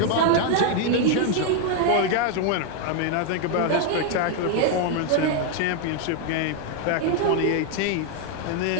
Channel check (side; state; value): both; different; correlation 0.01